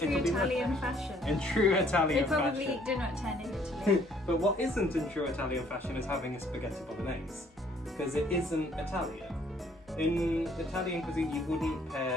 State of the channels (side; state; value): both; normal; correlation 0.62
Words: Italian fashion. In true Italian They probably fashion. eat dinner at 10 in Italy. But what isn't in true Italian fashion is having a spaghetti bolognese, because it isn't Italian. In Italian cuisine, you wouldn't